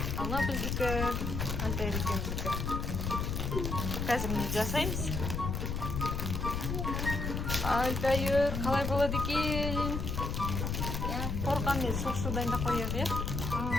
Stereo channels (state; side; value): noise; left; rumble, 2 dB below the sound